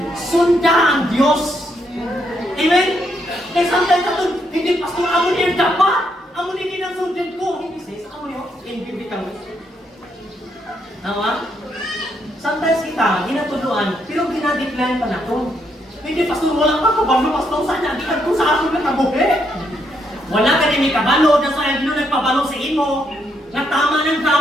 Sunda ang Diyos. Amen? Kaya sometimes ito, hindi pastor, amo niya dapat. Amo niya kinasundin ko. Hindi sis, amo niya, inbibitang. Tama? Sometimes kita, ginatuluan, pero ginadecline pa na ito. Hindi pastor, wala pa kabalo, pastor, saan niya, di ka sa akin na kabuhi. Wala ka din may kabalo, na sa Dino nagpabalo sa imo. Natama ng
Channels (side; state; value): both; normal; correlation 0.76